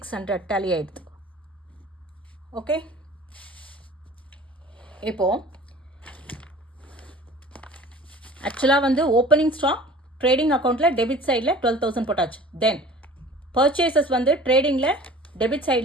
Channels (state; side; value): normal; both; correlation 0.44